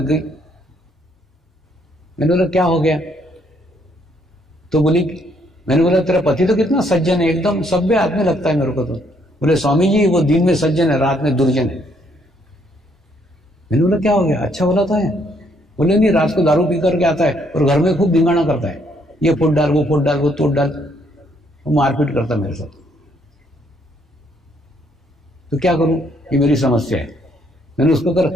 गई। मैंने बोला क्या हो गया? तो बोली, मैंने बोला तेरा पति तो कितना सज्जन है, एकदम सभ्य आदमी लगता है मेरे को। तो बोले स्वामी जी वो दिन में सज्जन है, रात में दुर्जन है। मैंने बोला क्या हो गया? अच्छा बोला था है? बोले नहीं, रात को दारू पी करके आता है और घर में खूब धिंगाना करता है, ये फुट डाल, वो फुट डाल, वो तोड़ डाल, वो मारपीट करता मेरे साथ। तो क्या करूं? ये मेरी समस्या है। मैंने उसको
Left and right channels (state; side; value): normal; both; correlation 0.69